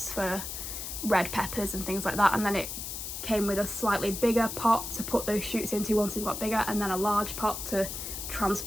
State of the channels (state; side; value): noise; left; hiss, 6 dB below the sound